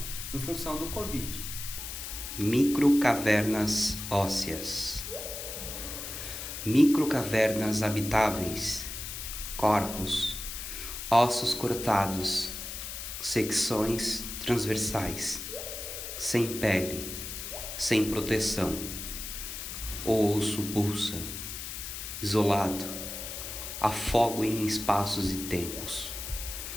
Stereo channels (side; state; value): left; noise; hiss, 7 dB below the sound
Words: em função do Covid. Microcavernas ósseas. Microcavernas habitáveis, corpos, ossos cortados, secções transversais, sem pele, sem proteção. O osso pulsa, isolado, afogo em espaços e tempos.